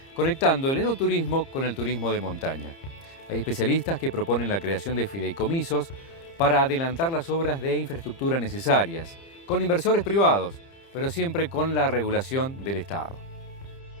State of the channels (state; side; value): late; right; 30 ms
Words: conectando el enoturismo con el turismo de montaña. Hay especialistas que proponen la creación de fideicomisos para adelantar las obras de infraestructura necesarias, con inversores privados, pero siempre con la regulación del Estado.